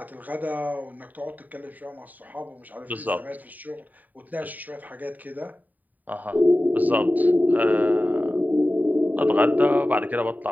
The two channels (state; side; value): late; left; 0.082 ms